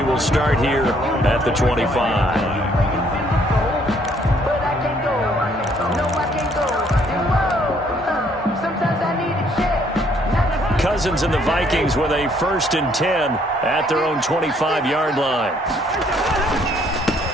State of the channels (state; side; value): normal; both; correlation 0.65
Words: will start here at the 25. Cousins and the Vikings with a 1st and 10 at their own 25-yard line.